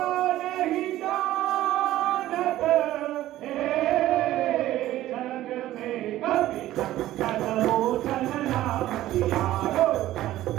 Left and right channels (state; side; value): quieter; left; 14.5 dB